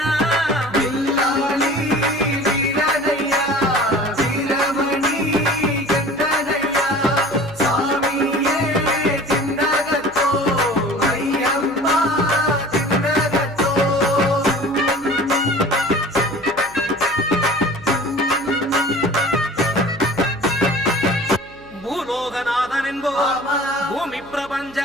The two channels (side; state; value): right; noise; hum, 21 dB below the sound